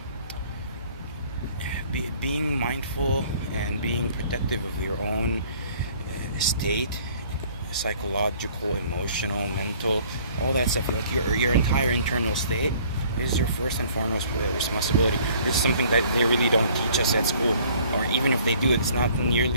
being mindful and being protective of your own state, psychological, emotional, mental, all that stuff, like your entire internal state, is your first and foremost responsibility. This is something that they really don't teach us at school, or even if they do, it's not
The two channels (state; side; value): inverted; both; correlation -0.56